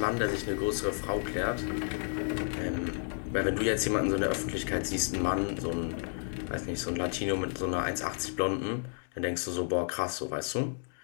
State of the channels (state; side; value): silent; right; 57 dB below the other